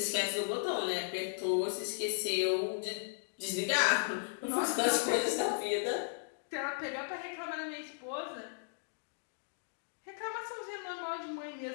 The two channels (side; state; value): right; silent; digital silence